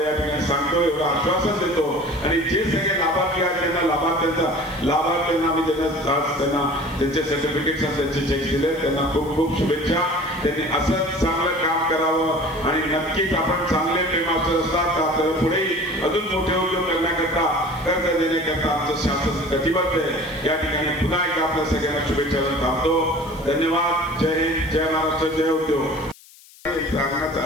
या ठिकाणी सांगतो, एवढं आश्वासन देतो. आणि जे सगळे लाभार्थी आहेत त्यांना लाभार्थ्यांना आम्ही त्यांना त्यांचे सर्टिफिकेट्स त्यांचे चेक दिले, त्यांना खूप खूप शुभेच्छा. त्यांनी असंच चांगलं काम करावं आणि नक्कीच आपण चांगले फेमास्टर असतात तर आपल्याला पुढेही अजून मोठे उद्योग करण्याकरता, कर्ज देण्याकरता आमचं शासन कटिबद्ध आहे. या ठिकाणी पुन्हा एकदा आपल्या सगळ्यांना शुभेच्छा देऊन थांबतो. धन्यवाद. जय हिंद, जय महाराष्ट्र, जय उद्योग. सांगण्याचा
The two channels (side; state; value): left; noise; hiss, 24 dB below the sound